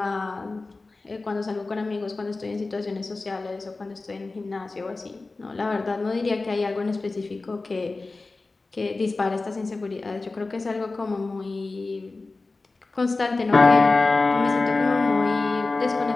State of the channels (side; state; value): right; quieter; 3.5 dB